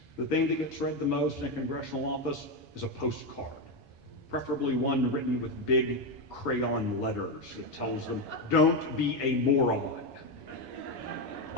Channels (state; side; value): late; right; 7.1 ms